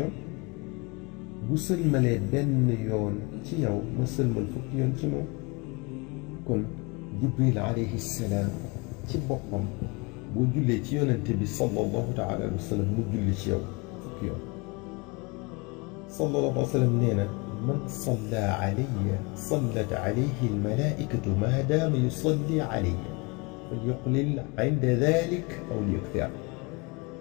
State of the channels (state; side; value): quieter; right; 27.9 dB